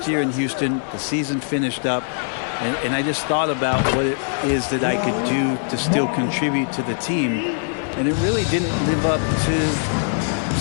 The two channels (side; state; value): right; silent; 60 dB below the other